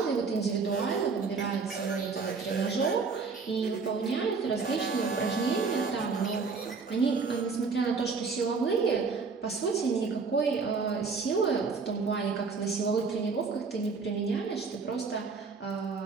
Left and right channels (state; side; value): quieter; left; 4.8 dB